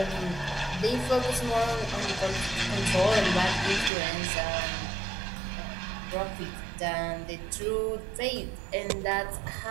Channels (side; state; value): left; drops out; at 3.9 s